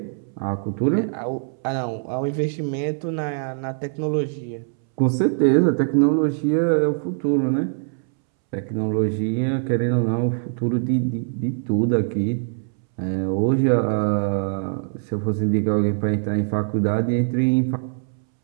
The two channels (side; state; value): left; silent; 64 dB below the other